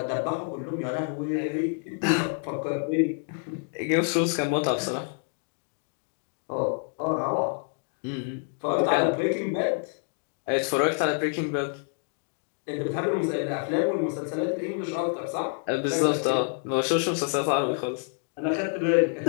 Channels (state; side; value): silent; right; 56 dB below the other